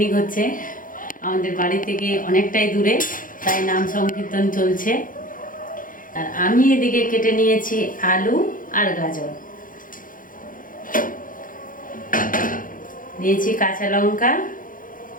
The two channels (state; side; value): late; right; 0.40 ms